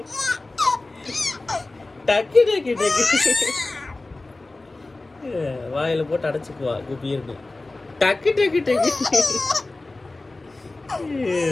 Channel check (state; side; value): quieter; right; 3.1 dB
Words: டக்கு டக்கு டக்கு டக்கு. வாயில போட்டு அடைச்சுக்குவா குப்பி இருக்கு. டக்கு டக்கு டக்கு.